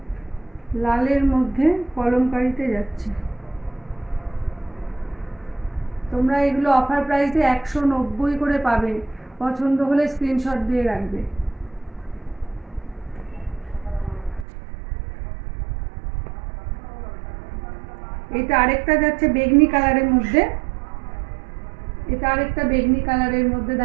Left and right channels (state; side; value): drops out; left; at 14.5 s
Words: লালের মধ্যে কলমকারিতে যাচ্ছে। তোমরা এগুলো অফার প্রাইসে 190 করে পাবে, পছন্দ হলে স্ক্রিনশট দিয়ে রাখবে। এটা আরেকটা যাচ্ছে বেগনি কালারের মধ্যে, এটা আরেকটা বেগনি কালারের মধ্যে,